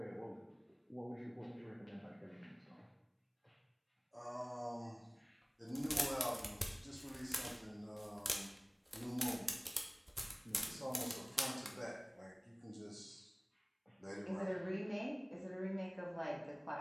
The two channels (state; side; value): identical; both; correlation 1.00